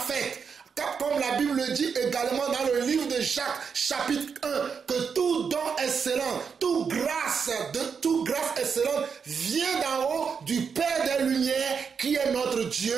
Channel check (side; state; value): left; quieter; 6.2 dB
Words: comme la Bible le dit également dans le livre de Jacques, chapitre 1, que tout don excellent, toute grâce excellente vient d'en haut du Père des Lumières, qui est notre Dieu,